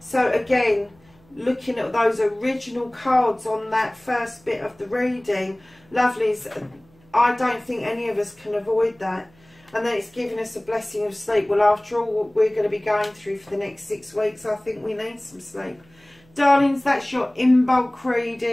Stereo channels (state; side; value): noise; right; hum, 30 dB below the sound